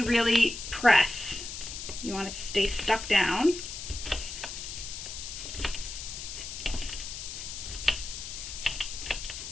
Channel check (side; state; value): left; noise; hiss, 8 dB below the sound